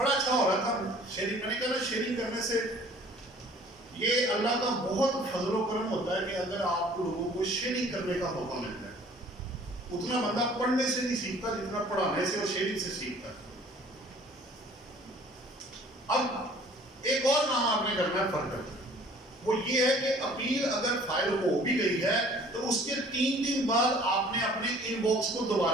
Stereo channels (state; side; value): normal; both; correlation 0.52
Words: अच्छा हो रहा था शेयरिंग, मैंने कहा शेयरिंग करने से ये अल्लाह का बहुत फजलो करम होता है कि अगर आप लोगों को शेयरिंग करने का मौका मिलता है। उतना बंदा पढ़ने से नहीं सीखता जितना पढ़ाने से और शेयरिंग से सीखता है। अब एक और काम आपने करना है फर्दर, वो ये है कि अपील अगर फाइल हो भी गई है तो उसके 3 दिन बाद आपने अपने इनबॉक्स को